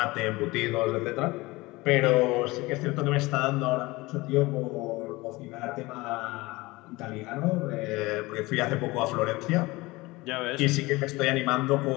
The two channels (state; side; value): quieter; right; 21.5 dB